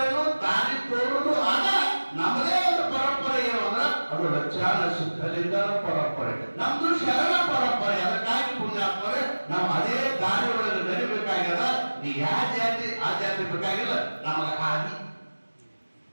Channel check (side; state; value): both; inverted; correlation -1.00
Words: ದಾರಿ ತೋರುದು ಆದ ನಮ್ಮದೇ ಒಂದು ಪರಂಪರೆ ಏನು ಅಂದ್ರೆ ಅದು ಲಕ್ಷಾನ ಸಿದ್ಧಲಿಂಗನ ಪರಂಪರೆ, ನಮ್ದು ಶರಣ ಪರಂಪರೆ. ಅದಕ್ಕಾಗಿ ಪುಣ್ಯಾತ್ಮರೇ ನಾವು ಅದೇ ದಾರಿ ಒಳಗೆ ನಡಿಬೇಕಾಗ್ಯದ. ನೀ ಯಾವ ಜಾತಿ ಆ ಜಾತಿ ಬೇಕಾಗಿಲ್ಲ, ನಮಗೆ